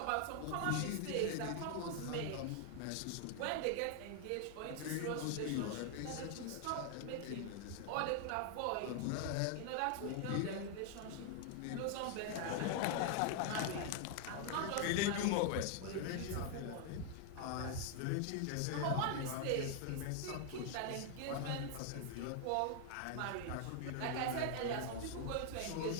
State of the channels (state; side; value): different; both; correlation 0.00